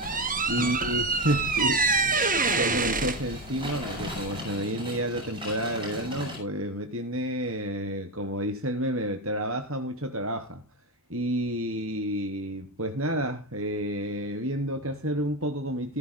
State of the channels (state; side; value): normal; both; correlation 0.16